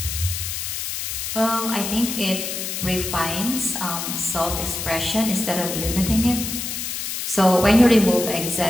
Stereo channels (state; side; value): noise; left; hiss, 4 dB below the sound